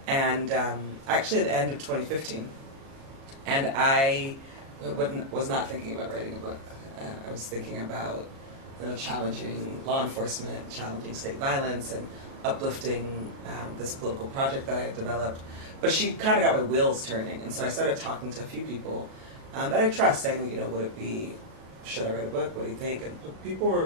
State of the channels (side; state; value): left; late; 37 ms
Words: and actually at the end of 2015. And I was not thinking about writing a book. I was thinking about challenging law enforcement, challenging state violence, and uplifting this political project that I had developed. But she kind of got my wheels turning, and so I started talking to a few people that I trust, saying, would it be, should I write a book? What do you think? And people